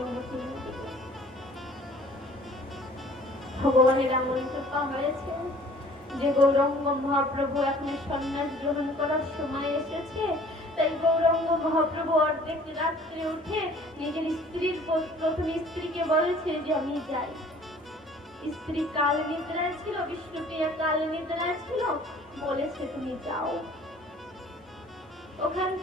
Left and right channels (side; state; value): both; normal; correlation 0.52